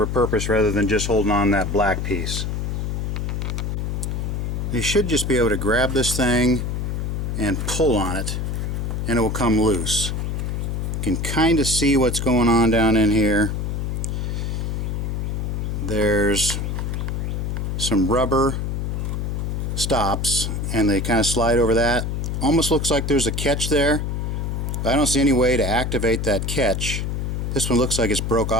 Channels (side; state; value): left; noise; hum, 1 dB below the sound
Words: a purpose rather than just holding on that black piece. You should just be able to grab this thing and pull on it and it will come loose. You can kind of see what's going on down in here. There's some rubber stops and they kind of slide over that. Almost looks like there's a catch there. I don't see any way to activate that catch. This one looks like it's broke